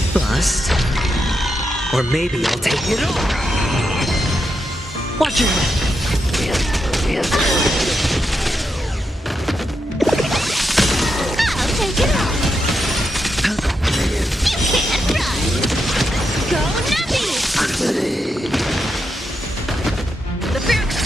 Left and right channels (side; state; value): both; normal; correlation 0.84